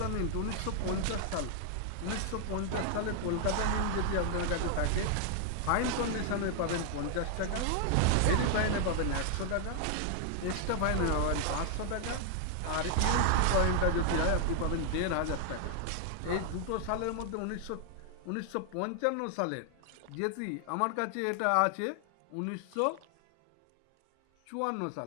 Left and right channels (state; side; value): different; both; correlation 0.00